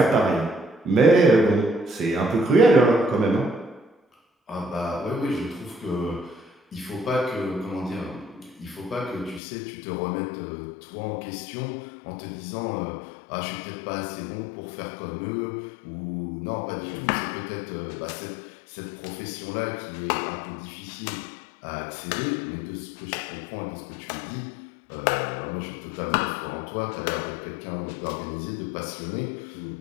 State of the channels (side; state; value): right; drops out; at 9.4 s